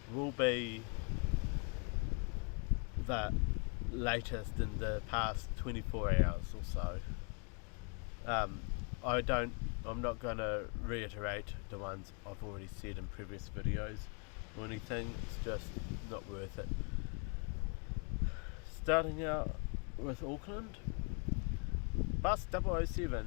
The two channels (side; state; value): right; quieter; 37.5 dB